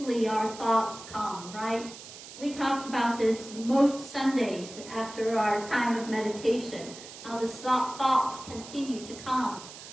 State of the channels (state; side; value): noise; right; hiss, 15 dB below the sound